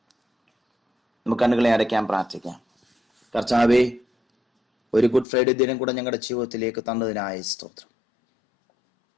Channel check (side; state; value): right; drops out; at 5.2 s